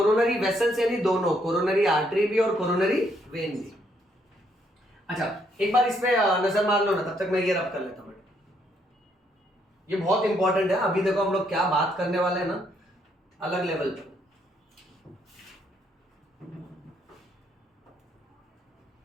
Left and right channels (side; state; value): both; normal; correlation 0.72